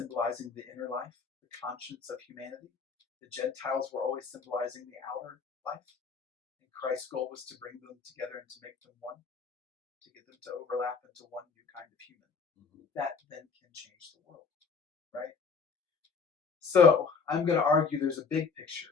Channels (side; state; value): right; quieter; 5.3 dB